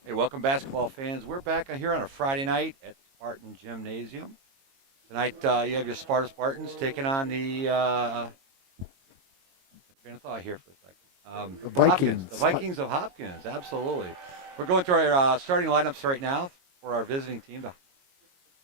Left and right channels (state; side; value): late; left; 22 ms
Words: Hey, welcome, basketball fans. We're back here on a Friday night at Spartan Gymnasium. Tonight, you have your Spartans taking on the train of thought here for a second. The Hopkins, the Vikings. Vikings of Hopkins. Absolutely. We're going through our starting lineups right now for our visiting team, the